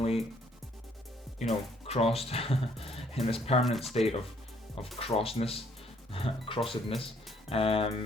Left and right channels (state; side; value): normal; both; correlation 0.65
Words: you know, crossed in this permanent state of crossedness,